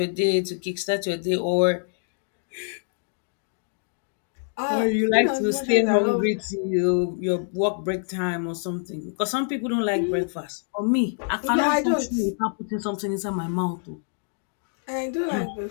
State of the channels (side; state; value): right; silent; 61 dB below the other